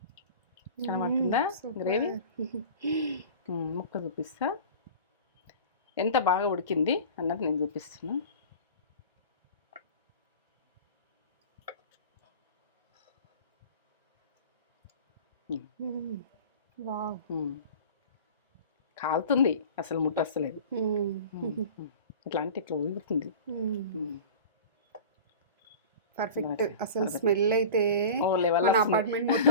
కనబడుతుందా గ్రేవీ? ముక్క చూపిస్తా ఎంత బాగా ఉడికింది అన్నది నేను చూపిస్తున్నా. కాలుతుంది, అసలు ముట్ట వస్తలేదు. ఇట్లా అంటే ఇట్లా ఉడుకుతుంది. పర్ఫెక్ట్. అసలు స్మెల్ అయితే మన అపార్ట్మెంట్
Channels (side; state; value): both; inverted; correlation -0.37